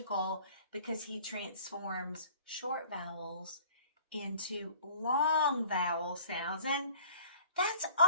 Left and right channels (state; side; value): inverted; both; correlation -0.51